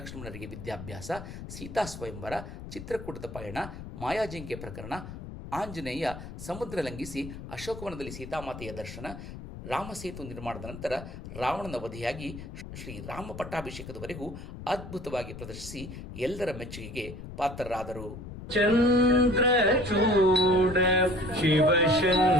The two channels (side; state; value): left; noise; rumble, 11 dB below the sound